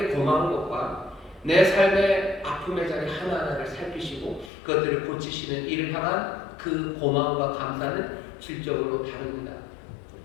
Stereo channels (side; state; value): right; drops out; at 4.5 s